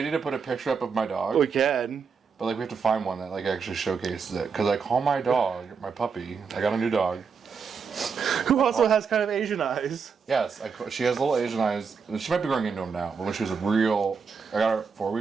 need to put a picture up of my dog? We can. But like we have to find one that like actually showcases it. Because I call my dog, my puppy, I got a new dog. Who also has kind of Asian eyes. Yes, she has little Asian eyes. She might be growing into them now. But when she was I got her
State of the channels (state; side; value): quieter; left; 5.7 dB